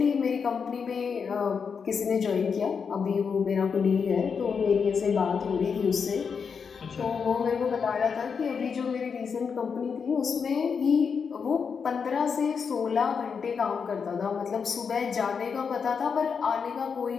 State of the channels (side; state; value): right; quieter; 6.1 dB